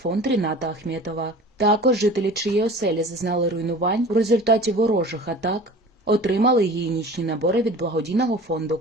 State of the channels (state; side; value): normal; both; correlation 0.41